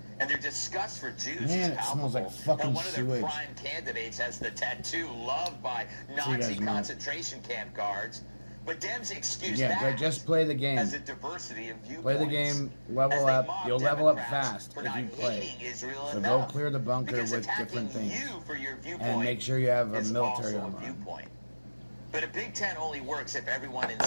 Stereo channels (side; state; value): both; inverted; correlation -1.00